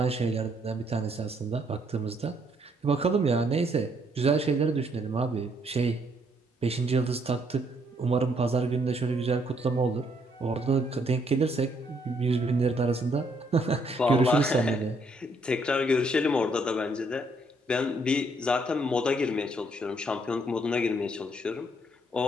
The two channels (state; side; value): normal; both; correlation 0.70